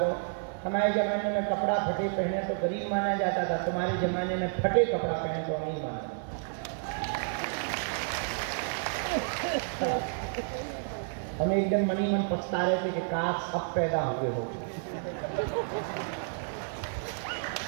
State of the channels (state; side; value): silent; left; 57 dB below the other